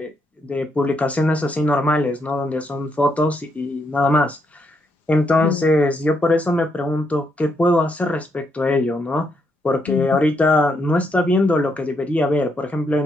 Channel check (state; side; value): normal; both; correlation 0.77